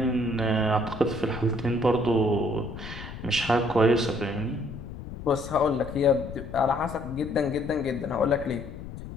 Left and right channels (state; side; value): noise; left; rumble, 11 dB below the sound